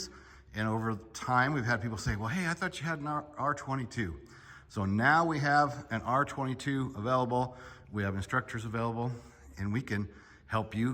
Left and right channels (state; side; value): identical; both; correlation 1.00